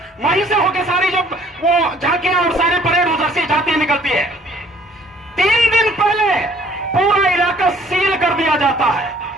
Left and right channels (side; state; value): both; normal; correlation 0.58